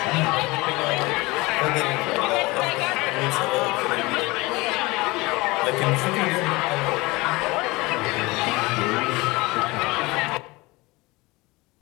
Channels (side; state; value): right; quieter; 22.7 dB